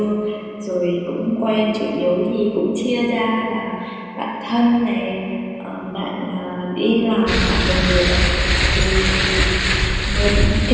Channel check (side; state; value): both; identical; correlation 1.00